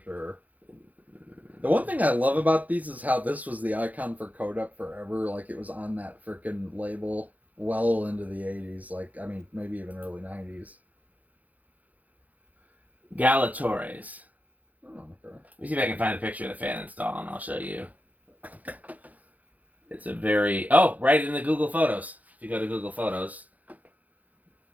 sure. The one thing I love about these is how this was the icon for Codep forever. Like, it was on that freaking label well into the 80s. Like, I mean, maybe even early 90s. Galatores. Oh, okay. Let me see if I can find a picture of the fan install, and I'll show you. It's a very... Oh, right in the Google Photos. If you go to Google Photos.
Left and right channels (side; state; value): left; late; 0.077 ms